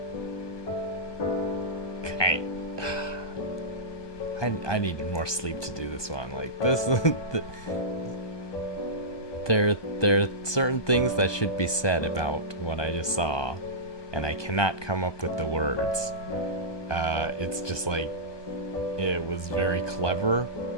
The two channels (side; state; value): right; late; 1.2 ms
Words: I I needed more sleep to do this one. Like this, there are certain things that should be said about what I just saw, and I cannot come up with the words. It's just like it was very clever